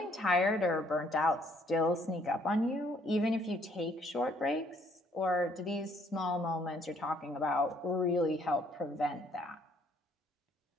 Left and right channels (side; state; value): both; normal; correlation 0.65